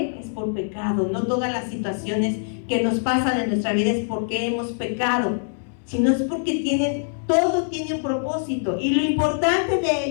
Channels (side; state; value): right; silent; 63 dB below the other